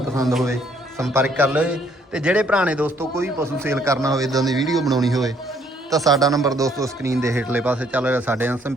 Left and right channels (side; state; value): both; normal; correlation 0.66